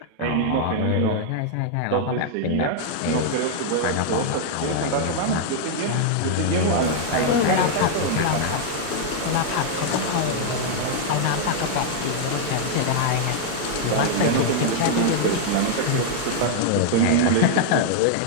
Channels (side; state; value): both; different; correlation -0.01